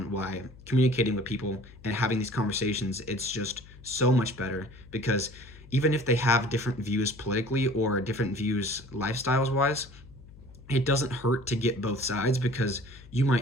why communicating with people and having these conversations, it's just so much better. Because even if they have different views politically, or different views lifestyles wise, it doesn't hurt to get both sides, because you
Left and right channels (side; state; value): left; noise; hum, 20 dB below the sound